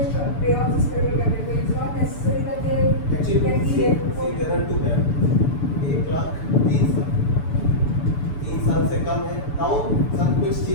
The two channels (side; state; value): right; late; 6.9 ms